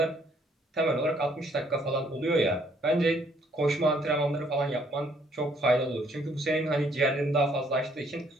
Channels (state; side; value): normal; both; correlation 0.66